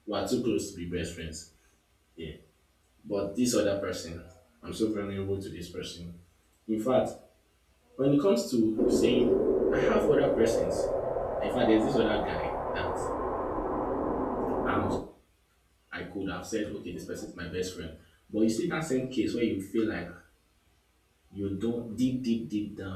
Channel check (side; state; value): both; identical; correlation 1.00